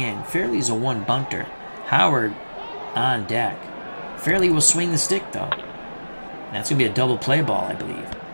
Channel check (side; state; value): both; inverted; correlation -1.00